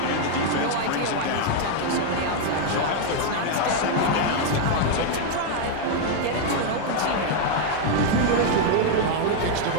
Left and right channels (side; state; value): both; different; correlation 0.00